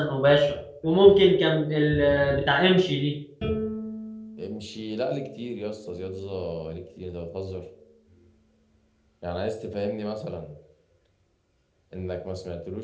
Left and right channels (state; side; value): identical; both; correlation 1.00